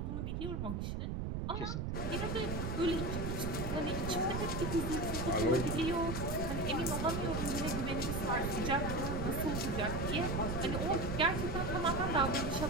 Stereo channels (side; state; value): right; noise; rumble, 2 dB below the sound